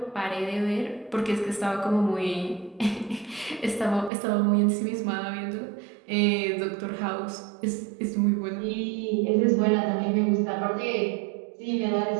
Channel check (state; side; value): drops out; left; at 4.1 s